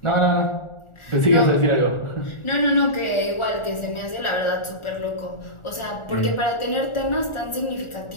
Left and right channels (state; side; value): late; right; 1.4 ms